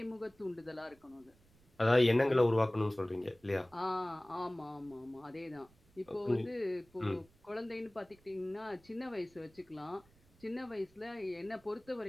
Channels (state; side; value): noise; right; rumble, 29 dB below the sound